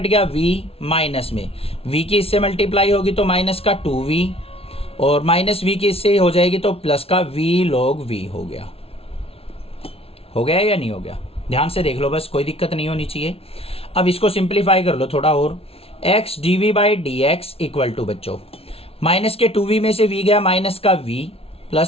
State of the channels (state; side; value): late; right; 0.28 ms